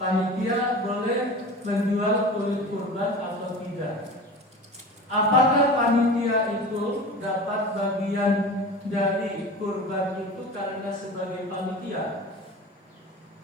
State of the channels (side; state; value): both; normal; correlation 0.34